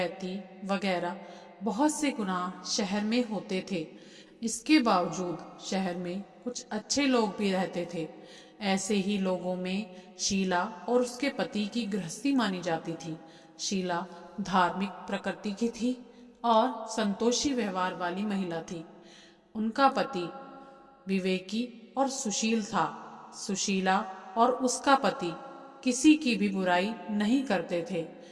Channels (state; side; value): identical; both; correlation 1.00